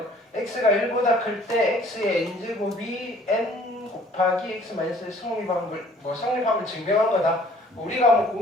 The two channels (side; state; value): both; normal; correlation 0.55